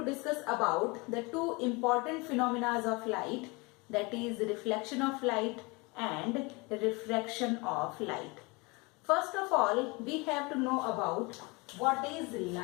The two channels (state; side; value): quieter; right; 26.9 dB